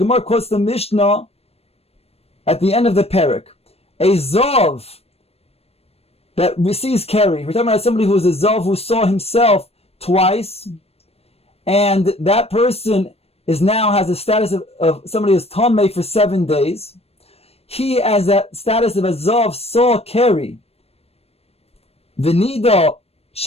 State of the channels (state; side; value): late; right; 0.29 ms